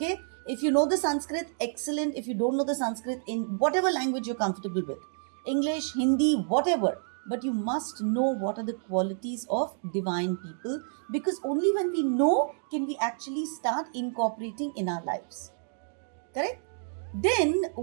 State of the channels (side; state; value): left; silent; digital silence